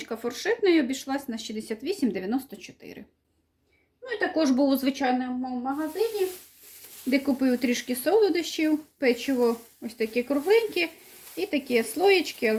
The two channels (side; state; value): both; identical; correlation 1.00